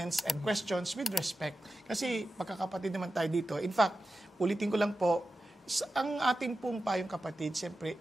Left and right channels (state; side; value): normal; both; correlation 0.92